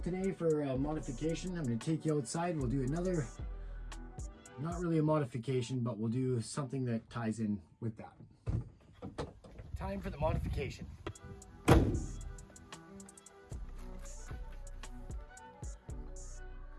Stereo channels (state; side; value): identical; both; correlation 1.00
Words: today for modification. I'm going to take you outside. We'll do another, not really a modification, but we'll do something that ties in with that. Time for the modification.